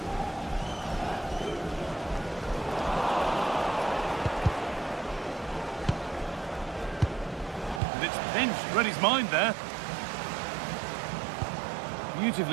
And it's pinched, read his mind there.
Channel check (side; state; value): left; drops out; at 7.8 s